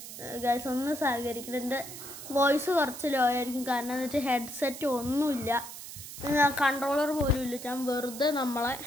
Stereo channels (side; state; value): right; noise; hiss, 11 dB below the sound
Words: ഗൈസ്. ഒന്ന് സഹകരിക്കണം. എൻ്റെ വോയിസ് കുറച്ച് ലോ ആയിരിക്കും, കാരണം എന്ന് വെച്ചാൽ ഹെഡ്സെറ്റ് ഒന്നുമില്ല, കൺട്രോളർ പോലും ഇല്ല. ഞാൻ വെറുതെ നമ്മളെ